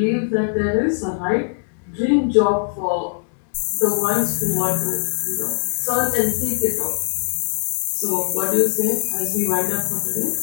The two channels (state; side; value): silent; right; digital silence